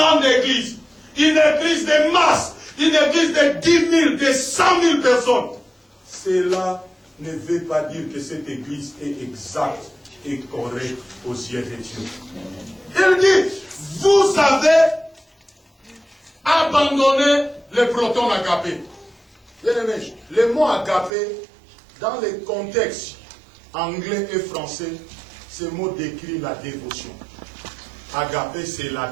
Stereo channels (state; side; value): drops out; left; at 21.1 s